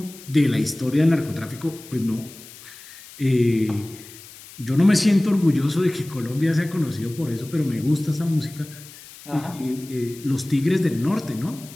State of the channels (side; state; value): left; noise; hiss, 18 dB below the sound